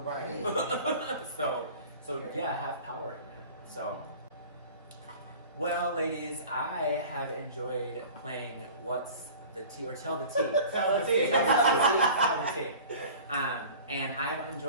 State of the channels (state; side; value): inverted; both; correlation -0.42